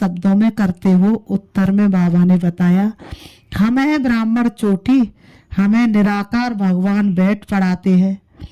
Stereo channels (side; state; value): both; identical; correlation 1.00